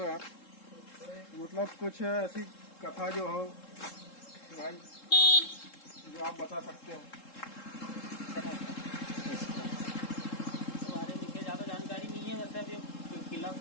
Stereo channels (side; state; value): right; late; 3.7 ms